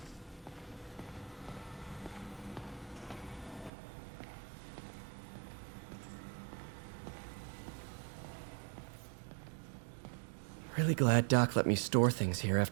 Really glad Doc let me store things here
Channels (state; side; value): drops out; left; at 3.7 s